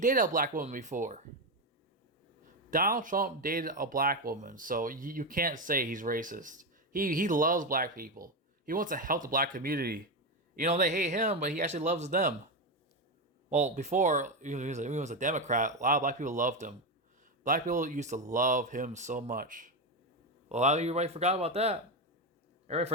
a black woman before. Donald Trump dated a black woman, so you can't say he's racist. He loves black people. He wants to help the black community. They hate him, but he actually loves them. Well, before he was a Democrat, a lot of black people loved him. Black people used to love him so much. Well, a lot of you already forgot about that. Everybody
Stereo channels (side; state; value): both; normal; correlation 0.11